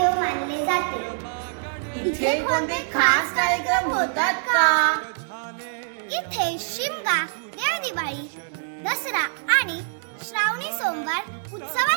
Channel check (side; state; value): left; silent; 62 dB below the other